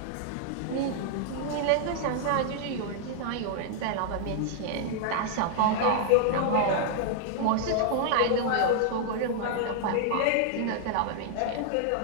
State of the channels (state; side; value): different; both; correlation -0.01